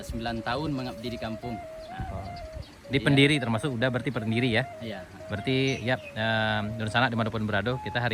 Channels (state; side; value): identical; both; correlation 1.00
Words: sudah 9 tahun mengabdi di kampung. Di pendiri termasuk udah berarti pendiri ya. Iya. Berarti ya Nur Sanak dimanapun berada, kita